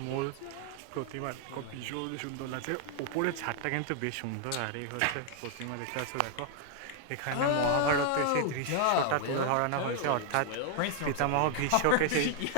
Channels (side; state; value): both; different; correlation 0.00